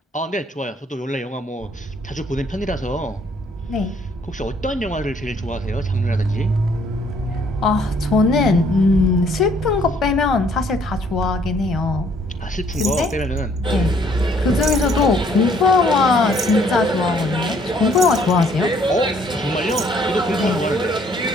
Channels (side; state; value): both; normal; correlation 0.63